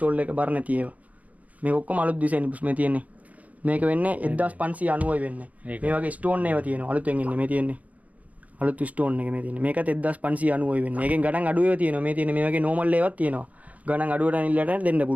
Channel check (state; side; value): late; left; 0.072 ms